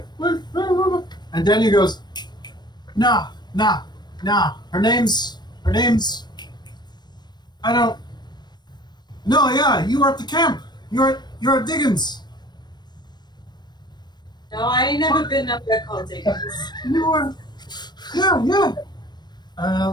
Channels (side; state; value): right; late; 0.21 ms